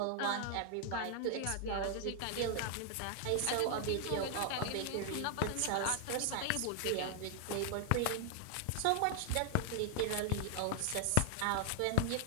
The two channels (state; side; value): different; both; correlation 0.00